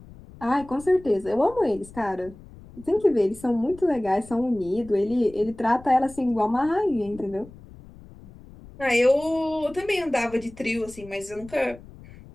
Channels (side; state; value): left; noise; rumble, 20 dB below the sound